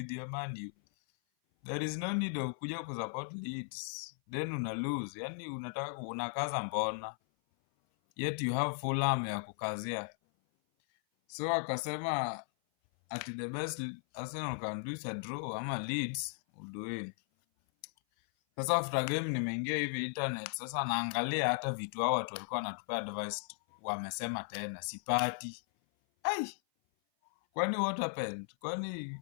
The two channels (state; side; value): silent; right; 54 dB below the other